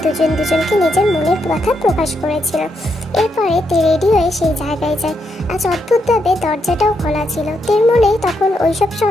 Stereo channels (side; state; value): both; normal; correlation 0.80